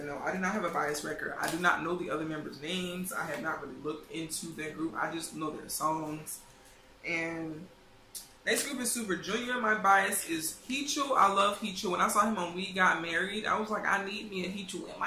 I do not have a bias record. I do not know the other members' names. I have not really looked into their group. I just know their songs. And next group is Super Junior. My bias is Hicho. I love Hicho. When I saw him on We Got Married, I was like, I need me a Hicho in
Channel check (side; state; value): both; identical; correlation 1.00